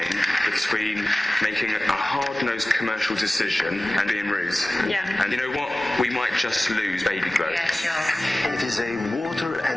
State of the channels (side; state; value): both; normal; correlation 0.97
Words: between making a hard-nosed commercial decision and being rude. Yeah. And you know what? We might just lose baby glow. Yeah, sure. It is a water